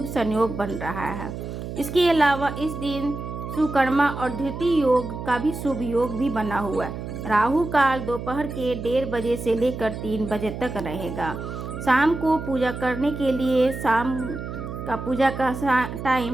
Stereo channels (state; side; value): noise; right; hum, 8 dB below the sound